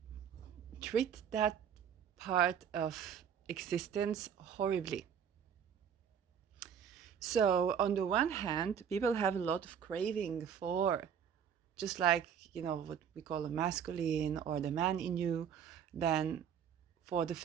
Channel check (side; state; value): left; quieter; 8.2 dB